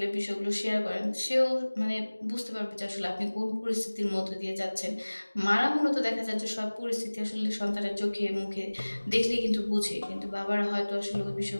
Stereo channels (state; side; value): inverted; both; correlation -1.00